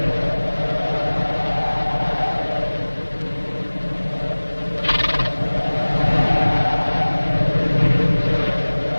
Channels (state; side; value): inverted; both; correlation -1.00